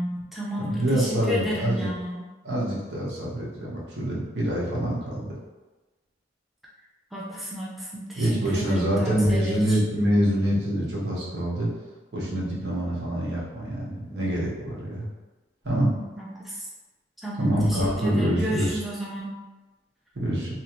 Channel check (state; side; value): normal; both; correlation 0.78